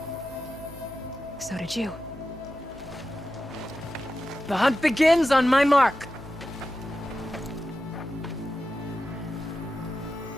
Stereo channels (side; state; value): both; normal; correlation 0.91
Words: So did you. The hunt begins on my mark.